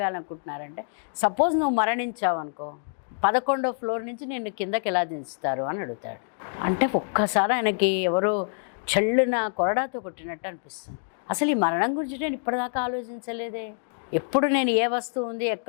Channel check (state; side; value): silent; right; digital silence